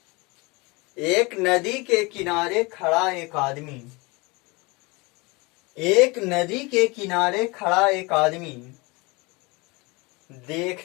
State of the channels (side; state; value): right; quieter; 26.0 dB